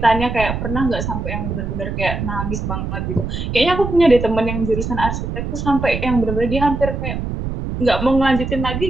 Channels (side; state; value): right; noise; rumble, 4 dB below the sound